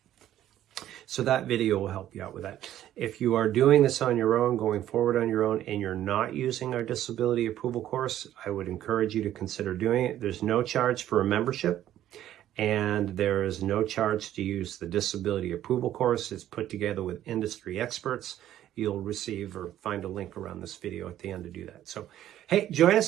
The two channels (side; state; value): left; quieter; 12.3 dB